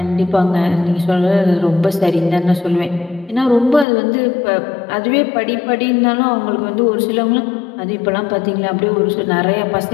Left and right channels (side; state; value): right; drops out; at 3.9 s